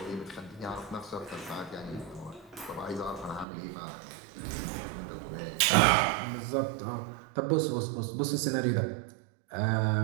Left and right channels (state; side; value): drops out; left; at 3.5 s